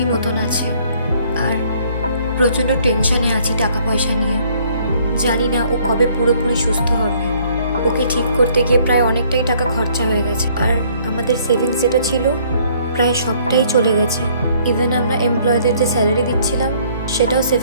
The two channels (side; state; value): both; inverted; correlation -0.61